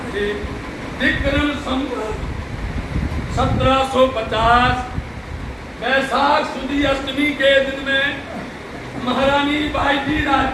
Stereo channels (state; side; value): identical; both; correlation 1.00